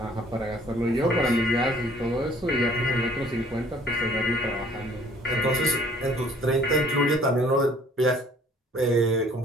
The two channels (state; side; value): normal; both; correlation 0.56